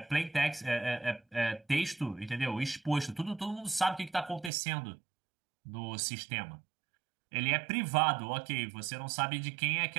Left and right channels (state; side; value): drops out; left; at 4.5 s